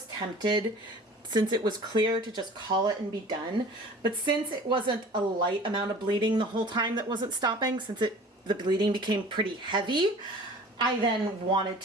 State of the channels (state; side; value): normal; both; correlation 0.44